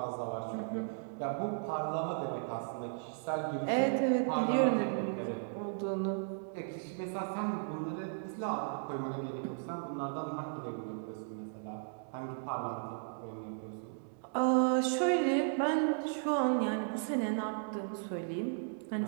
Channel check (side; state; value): left; silent; digital silence